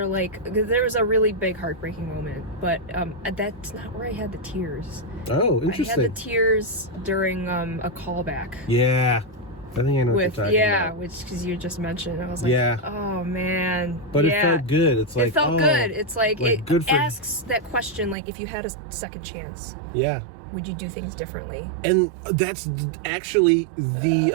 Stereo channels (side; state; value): left; drops out; at 18.2 s